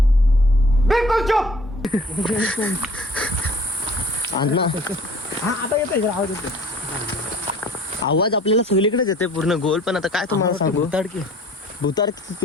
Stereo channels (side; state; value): both; normal; correlation 0.51